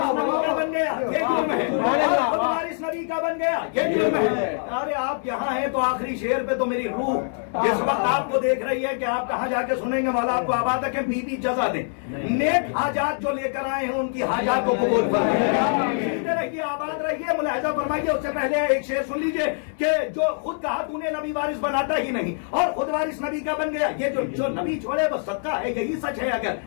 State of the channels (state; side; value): silent; right; digital silence